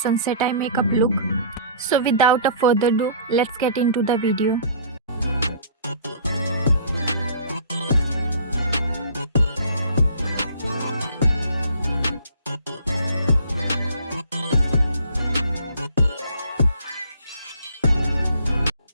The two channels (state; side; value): inverted; both; correlation -0.51